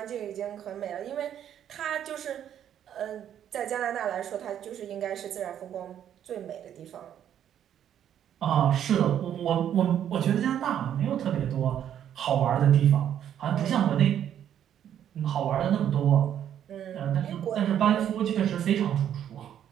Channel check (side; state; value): left; quieter; 10.0 dB